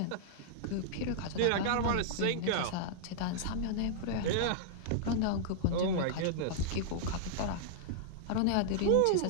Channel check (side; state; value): both; different; correlation -0.01